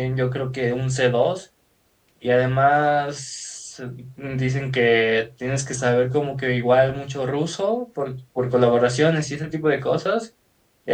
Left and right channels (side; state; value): both; identical; correlation 1.00